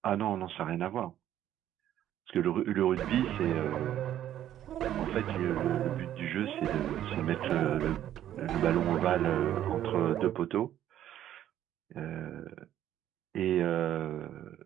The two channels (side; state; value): left; quieter; 11.7 dB